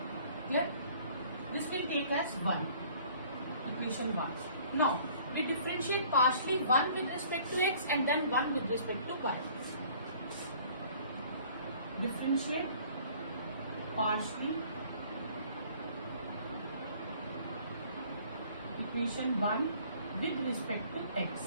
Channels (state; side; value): inverted; both; correlation -0.54